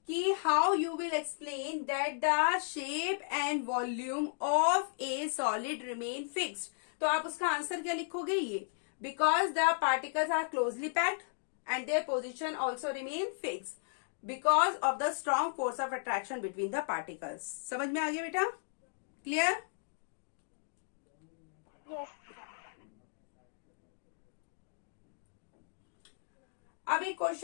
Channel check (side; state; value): right; silent; digital silence